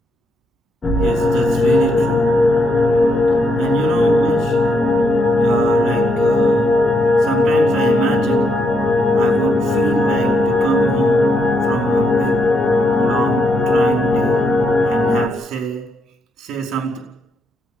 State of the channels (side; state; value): both; normal; correlation 0.78